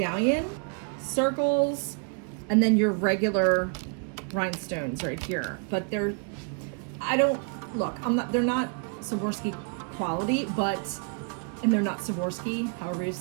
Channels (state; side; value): quieter; left; 38.2 dB